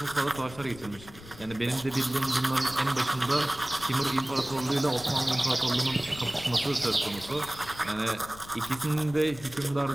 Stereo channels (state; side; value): noise; left; rumble, 18 dB below the sound